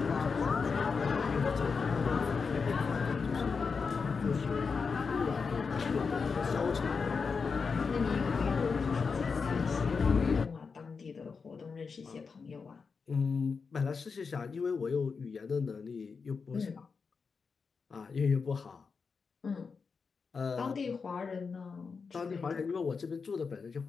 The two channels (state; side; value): quieter; right; 5.2 dB